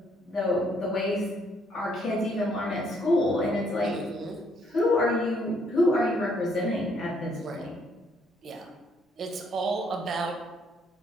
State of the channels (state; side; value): normal; both; correlation 0.69